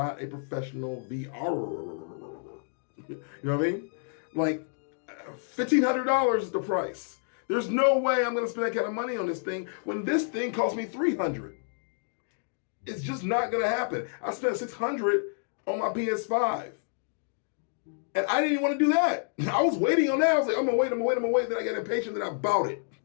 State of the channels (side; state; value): right; silent; digital silence